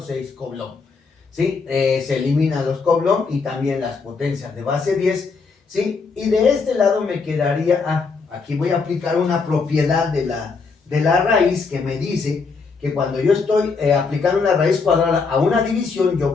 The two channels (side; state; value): right; quieter; 4.7 dB